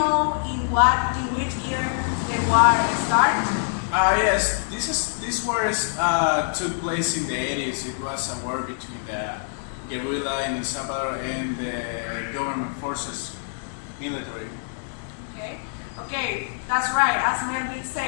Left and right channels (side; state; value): right; silent; digital silence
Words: in which year the war started? Yes, this war took place in the 80s. It was a war between the guerrilla in El Salvador and the government forces, military. Okay, that's right. As Melvin